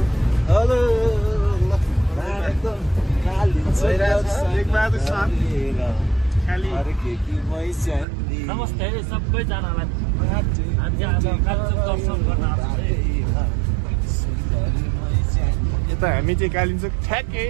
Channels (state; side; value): drops out; left; at 8.1 s